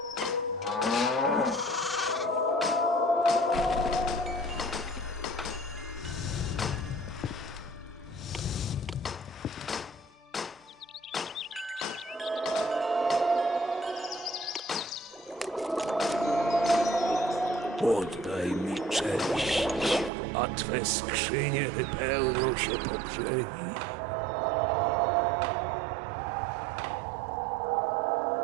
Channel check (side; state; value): left; drops out; at 20.1 s